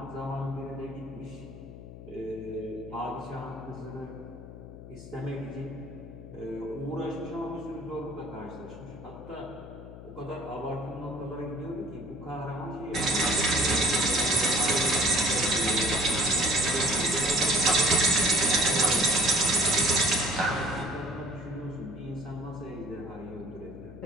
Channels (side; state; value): left; noise; hum, 14 dB below the sound